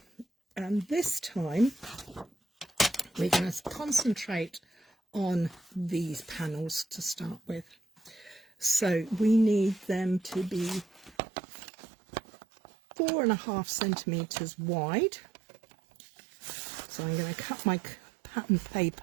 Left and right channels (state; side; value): drops out; left; at 11.2 s